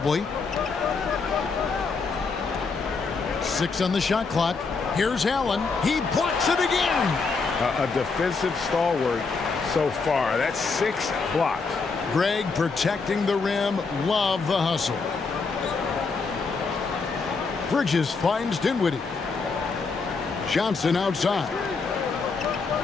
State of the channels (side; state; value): right; quieter; 4.6 dB